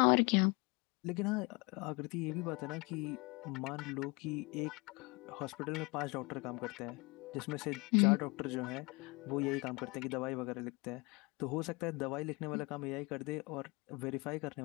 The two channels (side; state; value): right; quieter; 27.7 dB